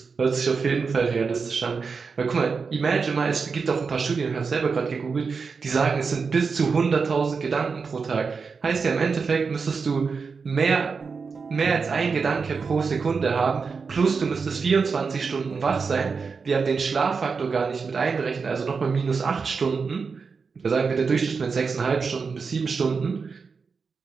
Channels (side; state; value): left; quieter; 5.1 dB